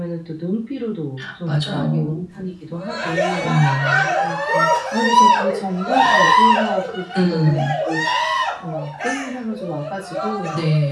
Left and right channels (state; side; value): identical; both; correlation 1.00